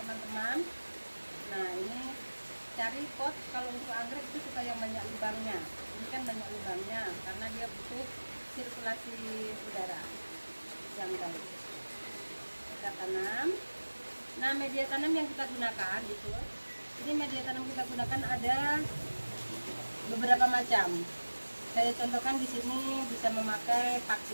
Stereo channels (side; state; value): both; inverted; correlation -1.00